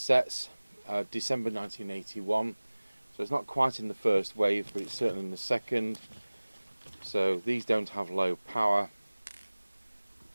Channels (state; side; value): inverted; both; correlation -1.00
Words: December 1981, so it's not quite in the first wave but it's certainly in the second. So these don't have low power,